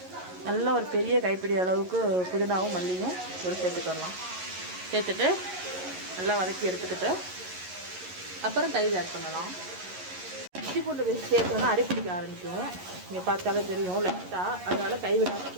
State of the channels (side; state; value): left; late; 11 ms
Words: நல்லா ஒரு பெரிய கைப்பிடி அளவுக்கு புதினாவும் மல்லியும் ஒரு சேர்த்துக்கலாம். சேர்த்துட்டு நல்லா வதக்கி எடுத்துக்கிட்டு அப்புறம் தயிர் ஆட் பண்ணலாம். இஞ்சி பூண்டு பேஸ்ட் சேர்க்கணும்னா அடி பிடிக்க ஆரம்பிக்கும். இங்கே பார்த்தாலே தெரியும் லைட்டாக. அதனால் கைவிடாமல்